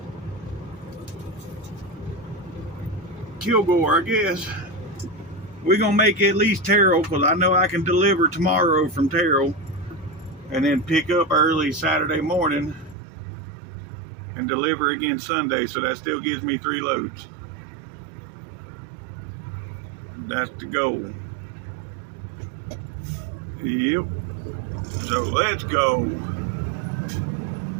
Kilgore, I guess. We're gonna make at least Terrell, because I know I can deliver tomorrow from Terrell and then pick up early Saturday morning and deliver again Sunday. So that still gives me 3 loads. That's the goal. Yep. So let's go.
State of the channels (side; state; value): left; drops out; at 13.0 s